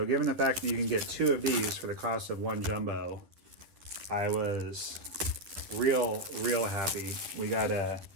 given the fact that you can get two of these for the cost of one jumbo, I was real happy. We got a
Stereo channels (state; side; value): late; left; 11 ms